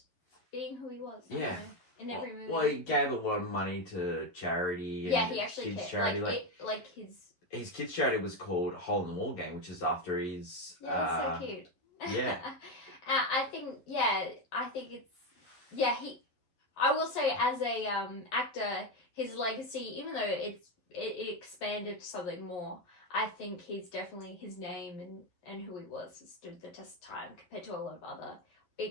being who he was. Yeah. In every movie. Well, he gave a lot of money to charity. And he actually kids' cared. charity. His kids' charity was called Hole in the Wall Gang, which is after his. Yeah, that's so cute. Yeah. I think it's I will say, as a actor, his legacy, even though it expanded to something more, I think he's definitely, his name and who he was has stood the test of time compared to a lot of other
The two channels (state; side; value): late; right; 11 ms